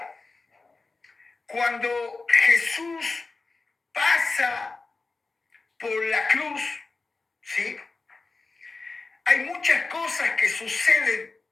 cuando Jesús pasa por la cruz, ¿sí?, hay muchas cosas que suceden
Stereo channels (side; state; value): right; quieter; 3.8 dB